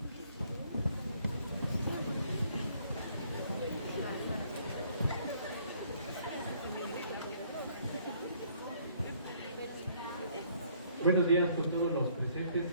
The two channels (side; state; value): both; inverted; correlation -0.63